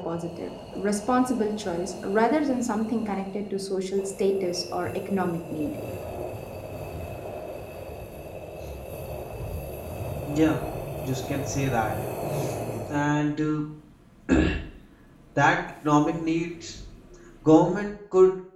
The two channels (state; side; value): identical; both; correlation 1.00